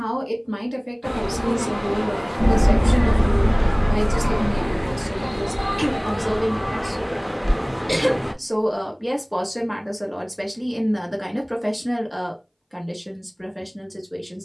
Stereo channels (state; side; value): identical; both; correlation 1.00